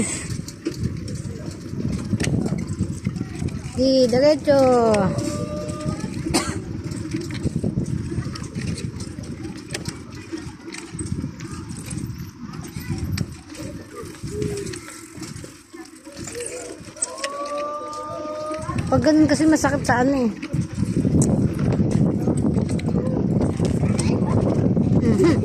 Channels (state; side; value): identical; both; correlation 1.00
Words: Di, diretso. Pag ganun kasi masakit sa ano eh.